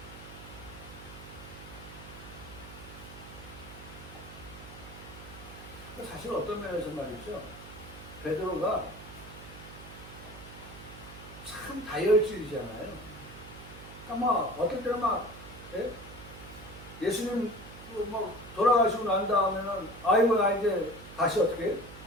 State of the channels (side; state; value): right; noise; hum, 15 dB below the sound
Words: 사실 어떤 면에서 말이죠. 베드로가 참 다혈질이잖아요. 그러니까 막 어떨 때는 막 예수님 막 돌아가시고 난 다음에는 아이고 나 이제 다시 어떻게